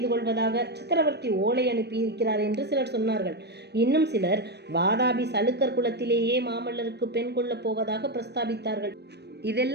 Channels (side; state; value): left; late; 0.49 ms